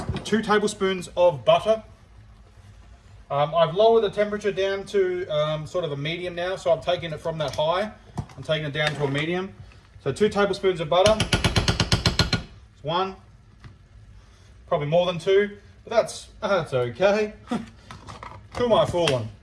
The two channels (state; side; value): identical; both; correlation 1.00